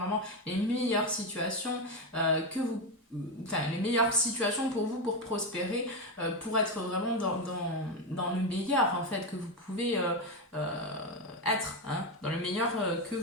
les meilleures situations que vous enfin, les meilleures situations pour vous pour prospérer, pour être vraiment dans le meilleur en fait que vous pouvez être, hein, dans le meilleur que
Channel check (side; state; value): both; normal; correlation 0.11